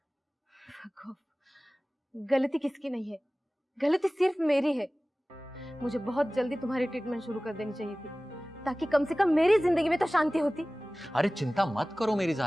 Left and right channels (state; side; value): normal; both; correlation 0.98